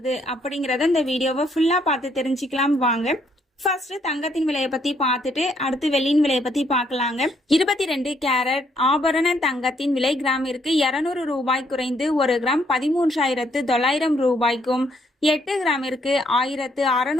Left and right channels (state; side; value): normal; both; correlation 0.70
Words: அப்படிங்கறத இந்த வீடியோவை ஃபுல்லா பார்த்து தெரிஞ்சுக்கலாம் வாங்க. ஃபர்ஸ்ட் தங்கத்தின் விலையை பத்தி பார்த்துட்டு அடுத்து வெள்ளியின் விலையை பத்தி பார்க்கலாங்க. 22 கேரட் ஆபரண தங்கத்தின் விலை கிராமிற்கு 200 ரூபாய் குறைந்து 1 கிராம் 13,900 ரூபாய்க்கும், 8 கிராமிற்கு